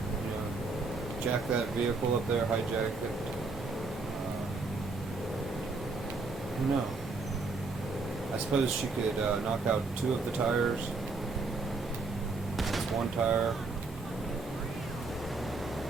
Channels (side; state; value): left; quieter; 3.8 dB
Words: jack that vehicle up there, hijack it. I don't know. I suppose she could knock out 2 of the tires. That's 1 tire.